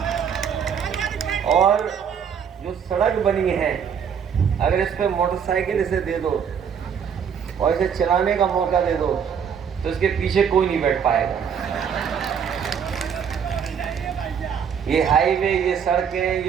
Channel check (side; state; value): left; quieter; 7.4 dB